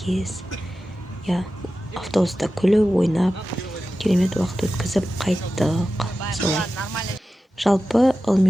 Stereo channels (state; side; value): normal; both; correlation 0.93